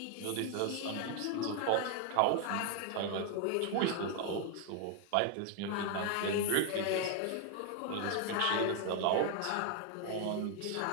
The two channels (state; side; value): different; both; correlation 0.00